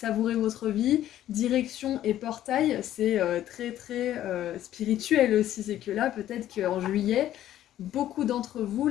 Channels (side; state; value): right; quieter; 12.5 dB